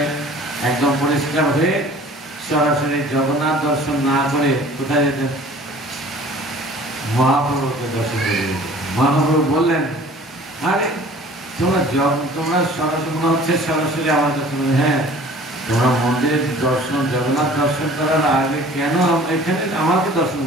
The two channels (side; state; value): both; normal; correlation 0.48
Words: একদম পরিষ্কার হয়ে সরাসরি জগন্নাথ দর্শন না করে কোথায় যেতেন, মহাপ্রভুকে দর্শন করে যেতেন। মহাপ্রভু বললেন, আরে তোমরা সরাসরি মনে হচ্ছে সরাসরি আমার কাছে, হ্যাঁ তোমরা মন্দিরের দর্শন জগন্নাথ দর্শন করার আগে কেন এখানে আমাকে দর্শন